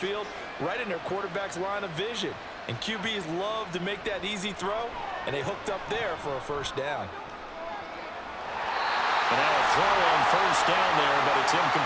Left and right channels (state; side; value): identical; both; correlation 1.00